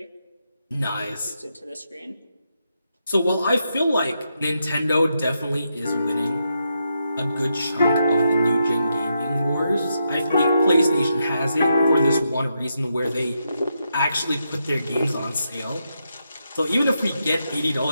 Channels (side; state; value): both; inverted; correlation -0.83